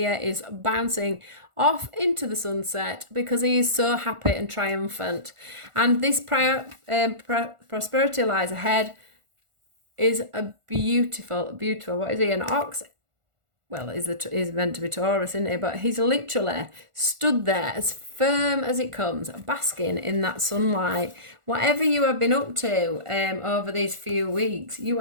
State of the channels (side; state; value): left; late; 1.4 ms